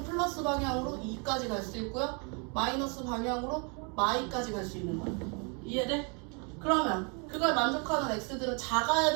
플러스 방향으로 2까지 갈 수 있고요. 마이너스 방향으로 마이까지 갈 수 있는 거야. 이해돼? 그러면 그걸 만족하는 x들은 작아야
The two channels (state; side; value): quieter; left; 34.8 dB